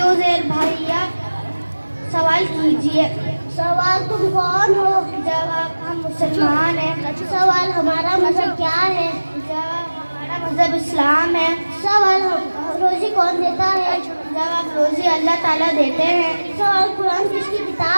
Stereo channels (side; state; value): both; inverted; correlation -1.00